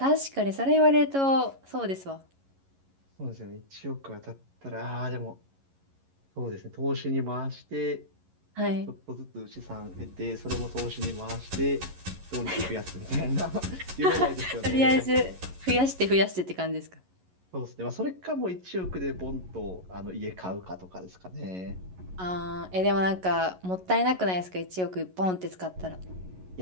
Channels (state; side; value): late; left; 11 ms